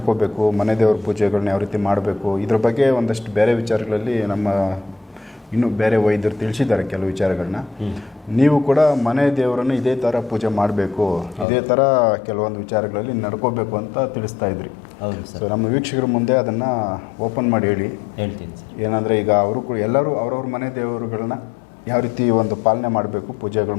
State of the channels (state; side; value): drops out; right; at 11.5 s